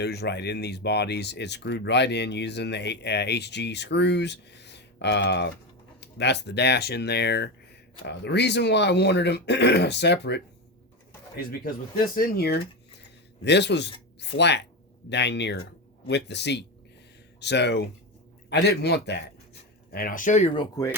right in these bodies. It's screwed right in using the HG screws. That's the dash in there. The reason why I wanted them separate is because with this in here, this was flat dang near with the seat. So I didn't want that. And I'll show you real quick.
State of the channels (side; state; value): both; normal; correlation 0.17